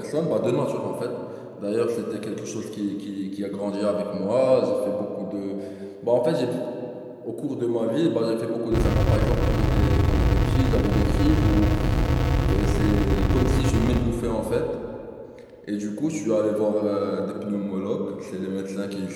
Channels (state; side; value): identical; both; correlation 1.00